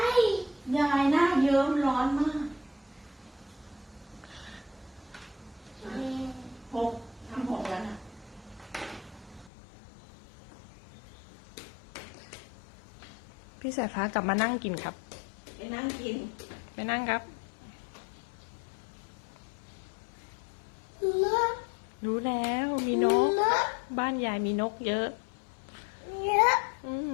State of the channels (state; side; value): drops out; right; at 9.5 s